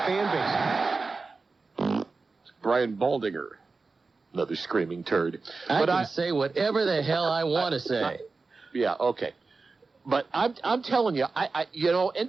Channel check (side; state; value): left; quieter; 4.0 dB